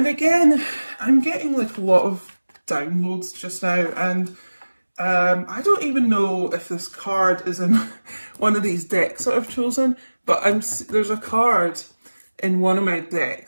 again, I'm getting like a lot of downloads just now, and I don't even know if this card is in one of these decks that I've chosen, but there's a card in one of my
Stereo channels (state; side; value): inverted; both; correlation -1.00